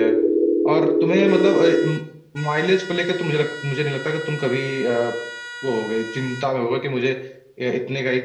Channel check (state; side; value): identical; both; correlation 1.00